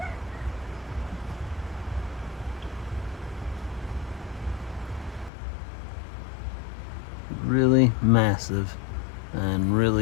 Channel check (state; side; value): drops out; right; at 5.3 s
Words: Really massive and